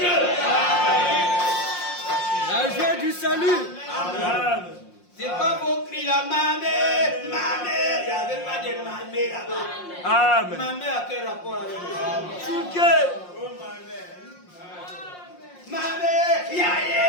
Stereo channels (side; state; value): right; late; 5.6 ms